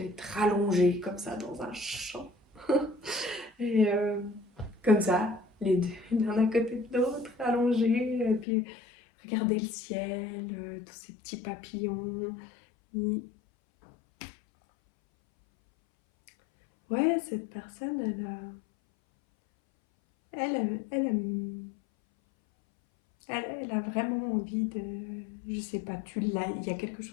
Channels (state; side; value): drops out; right; at 8.5 s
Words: allongée comme ça dans un champ. Et comme ça, les deux, l'un à côté de l'autre, allongés, et puis regarder le ciel, tous ces petits papillons. Ouais, cette personne, elle, elle a vraiment envie de... Je sais pas, il y a quelque